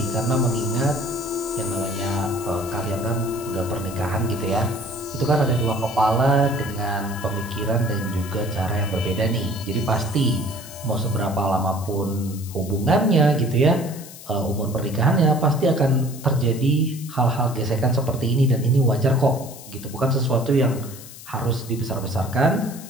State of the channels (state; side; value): noise; left; hiss, 16 dB below the sound